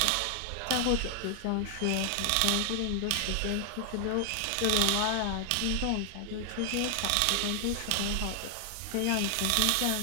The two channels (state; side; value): different; both; correlation 0.00